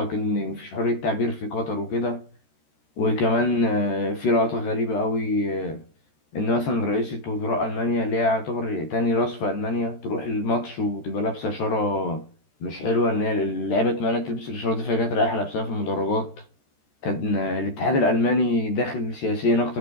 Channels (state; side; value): late; right; 13 ms